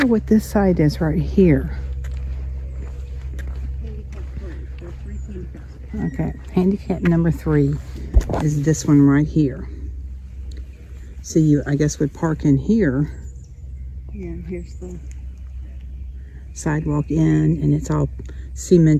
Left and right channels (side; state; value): both; identical; correlation 1.00